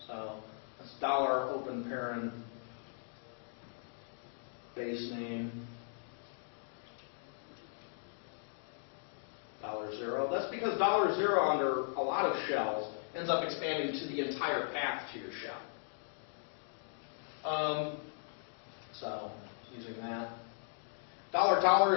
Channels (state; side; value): silent; right; digital silence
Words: So that's $open parent base name $0. That's because $0 under a lot of shells ends up expanding to the entire path to your shell. So using that. $$